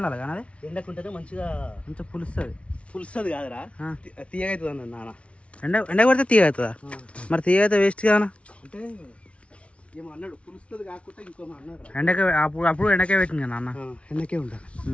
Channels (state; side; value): late; right; 0.062 ms